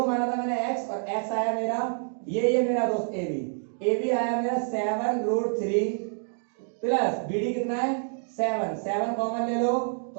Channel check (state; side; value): silent; left; 60 dB below the other